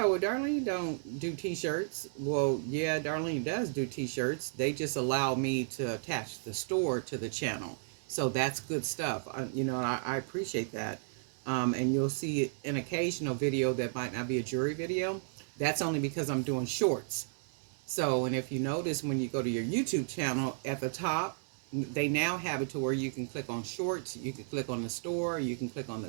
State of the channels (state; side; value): silent; left; digital silence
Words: well, Darlene don't do t-shirts. Well, yeah, Darlene does do t-shirts. They just allow me to attach the store to the channel. So that's good stuff. I appreciate that. And you'll see an occasional video that might not be a jewelry video. That's only because I'm doing shorts. So, and if you notice when you go to your YouTube channel at the top, they now have it to where you can click on shorts, you can click on the store, you can click on